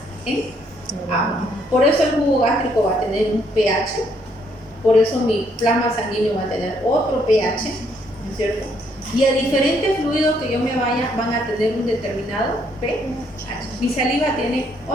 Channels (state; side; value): normal; both; correlation 0.70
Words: en agua. Por eso el jugo gástrico va a tener un pH, por eso mi plasma sanguíneo va a tener otro pH, ¿no es cierto? Y a diferentes fluidos que yo me vaya van a tener un determinado pH. Mi saliva tiene